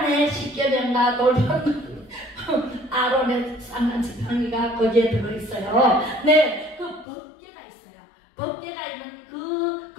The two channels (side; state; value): right; drops out; at 7.1 s